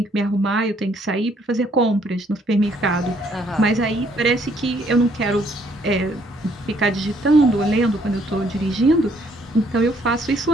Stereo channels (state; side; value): normal; both; correlation 0.66